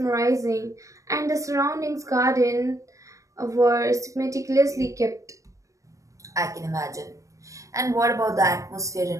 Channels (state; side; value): late; left; 0.16 ms